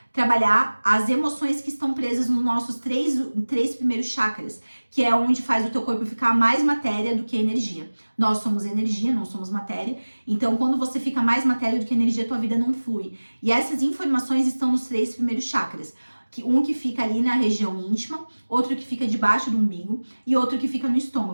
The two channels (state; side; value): inverted; both; correlation -1.00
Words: trabalhar as emoções que estão presas nos nossos três primeiros chakras, que é onde faz o teu corpo ficar mais matéria do que energia. Nós somos energia, não somos matéria. Então, quando você fica mais matéria do que energia, tua vida não flui. E essas informações estão nos 3 primeiros chakras. Um que fica ali na região íntima, outro que fica debaixo do umbigo e outro que fica no